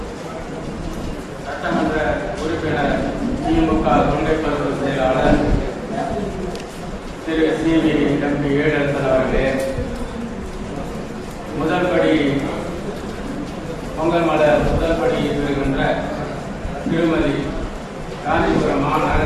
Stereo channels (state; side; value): identical; both; correlation 1.00